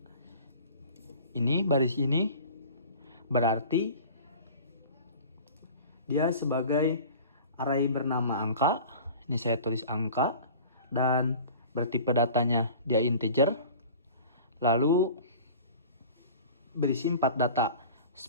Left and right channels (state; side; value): inverted; both; correlation -0.41